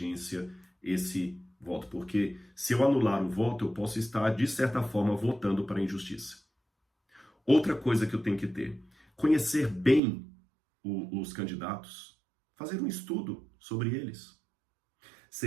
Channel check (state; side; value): drops out; left; at 10.0 s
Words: esse voto. Porque se eu anular o voto, eu posso estar, de certa forma, votando para a injustiça. Outra coisa que eu tenho que ter, conhecer bem os candidatos, fazer um estudo sobre eles.